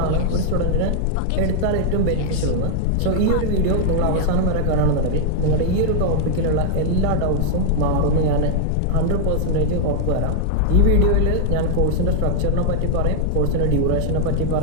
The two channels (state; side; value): different; both; correlation -0.01